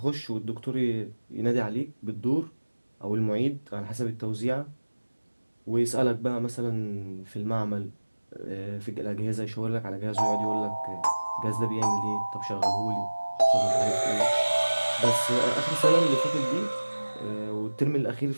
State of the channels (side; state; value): both; inverted; correlation -1.00